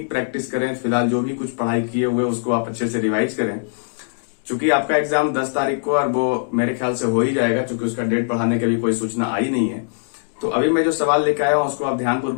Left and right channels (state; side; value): silent; right; digital silence